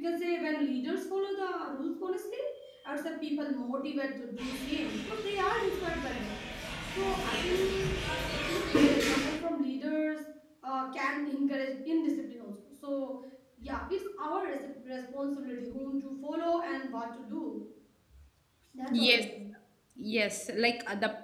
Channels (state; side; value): identical; both; correlation 1.00